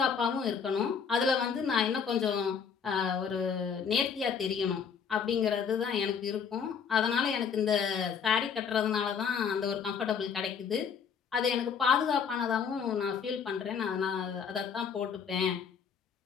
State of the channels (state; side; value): quieter; right; 6.7 dB